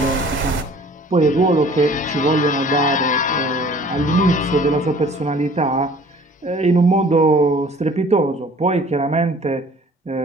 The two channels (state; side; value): normal; both; correlation 0.51